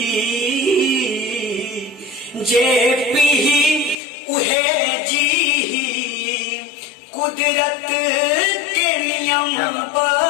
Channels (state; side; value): drops out; right; at 4.0 s